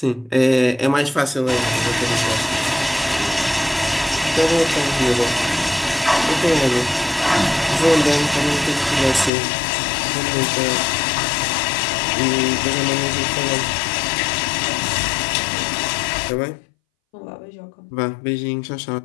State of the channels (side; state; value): right; drops out; at 9.3 s